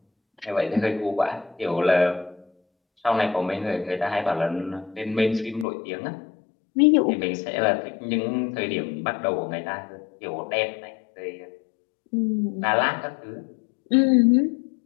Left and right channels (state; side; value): drops out; right; at 5.7 s